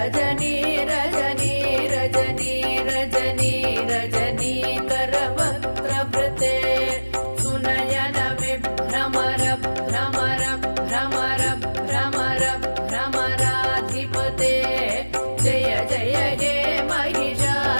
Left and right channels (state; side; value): inverted; both; correlation -1.00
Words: रजनी रजनी रजनी रजनीकरवक्त्रवृते सुनयन विभ्रमर भ्रमर भ्रमर भ्रमर भ्रमराधिपते जय जय हे